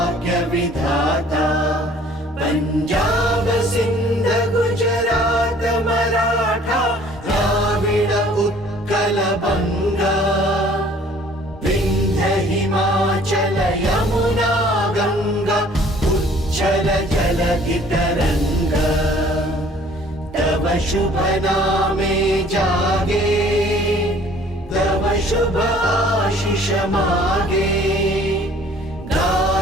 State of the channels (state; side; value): normal; both; correlation 0.54